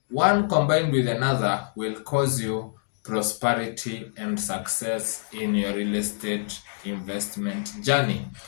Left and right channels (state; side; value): silent; right; digital silence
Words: combined with another will cause you prosperity and success in your real estate investment journey.